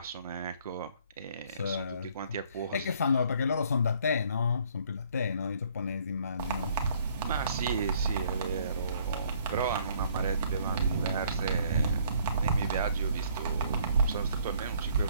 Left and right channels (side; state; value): both; inverted; correlation -0.62